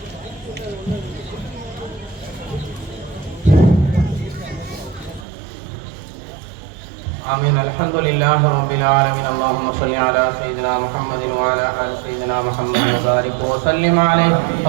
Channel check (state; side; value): drops out; left; at 5.2 s